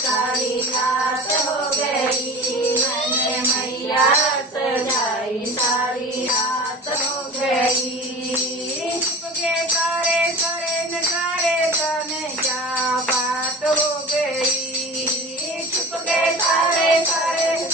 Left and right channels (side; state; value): both; normal; correlation 0.34